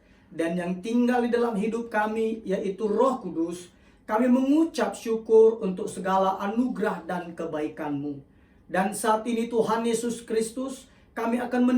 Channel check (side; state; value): both; identical; correlation 1.00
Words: dan yang tinggal di dalam hidup kami yaitu Roh Kudus, kami mengucap syukur untuk segala anugerah dan kebaikan-Mu. Dan saat ini Tuhan Yesus Kristus, kami akan